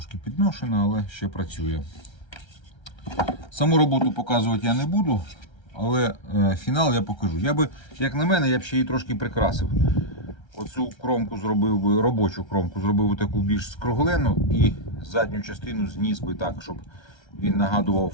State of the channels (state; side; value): late; right; 1.3 ms